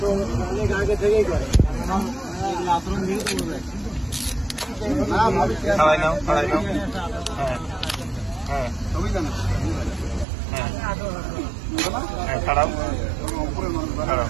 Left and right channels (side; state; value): left; drops out; at 10.2 s